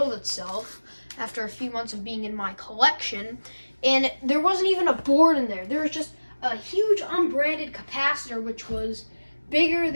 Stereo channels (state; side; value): inverted; both; correlation -1.00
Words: itself after a few months of being in my collection, and there wasn't even a board in there. There was just a huge unbranded capacitor, which was bigger